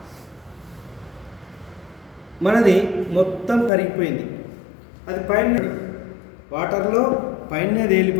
మనది మొత్తం కరిగిపోయింది. అది పైన వాటర్లో పైనే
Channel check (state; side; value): drops out; right; at 3.7 s